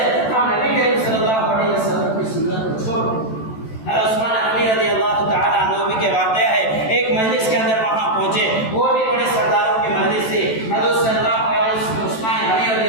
ہم نبی کریم صلی اللہ علیہ وسلم کی سنت کو چھوڑ دیں۔ عثمان غنی رضی اللہ تعالیٰ عنہ کے واقعہ ہے، ایک مجلس کے اندر وہاں پہنچے، وہ بھی بڑے سرداروں کی مجلس تھی۔ حضرت صلی اللہ علیہ وسلم عثمان غنی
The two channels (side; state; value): right; late; 14 ms